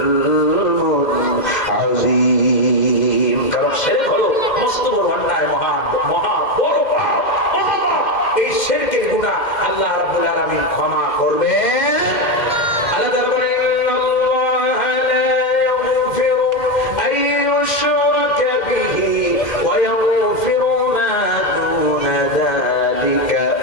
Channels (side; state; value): right; late; 2.1 ms